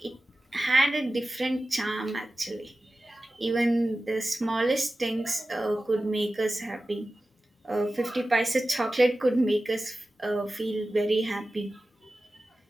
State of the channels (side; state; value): both; normal; correlation 0.95